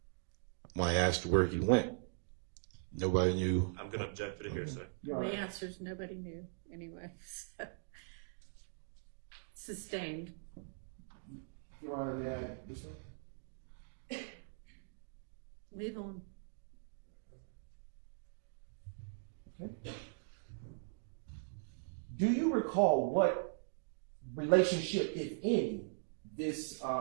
I asked where he went, nobody knew. I'm going to object to the hearsay. The answer is nobody knew anyway. So. Sustained. Your Honor, may I this one? Move on. Okay. Do you recall what relationship, if any, this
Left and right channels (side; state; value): left; silent; digital silence